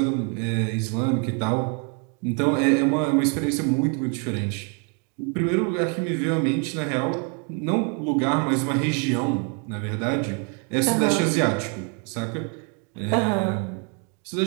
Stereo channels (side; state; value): left; quieter; 38.0 dB